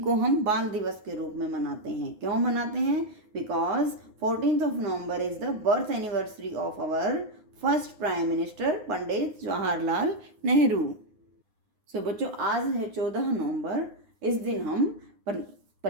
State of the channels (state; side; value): late; left; 9.6 ms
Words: हम बाल दिवस के रूप में मनाते हैं। क्यों मनाते हैं? Because 14th of November is the birth anniversary of our first prime minister Pandit Jawaharlal Nehru. So बच्चों, आज है 14 नवंबर। इस दिन हम